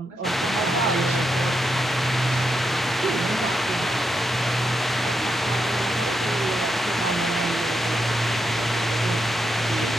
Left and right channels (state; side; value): normal; both; correlation 0.83